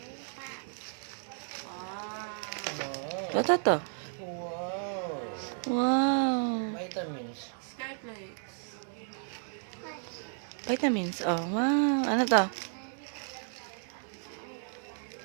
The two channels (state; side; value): silent; left; 56 dB below the other